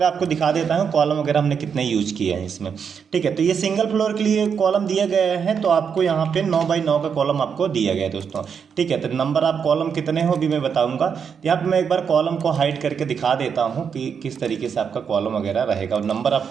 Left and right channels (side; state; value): left; quieter; 6.8 dB